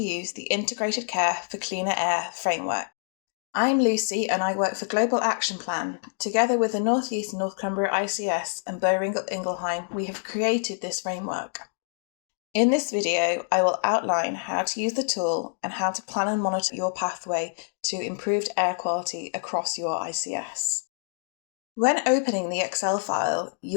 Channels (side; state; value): right; silent; digital silence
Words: the Integrated Care for Cleaner Air Framework. I'm Lucy and I work for Global Action Plan. Together with the North East and North Cumbria ICS and Boehringer Ingelheim, we have created this framework. In this video, I will outline how to use the tool and how to plan and monitor your pathway to improved air quality across your ICS. When opening the Excel file,